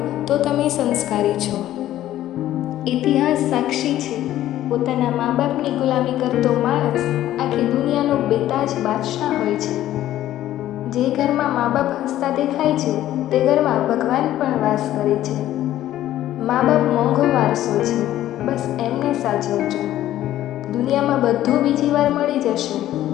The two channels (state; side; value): quieter; right; 13.3 dB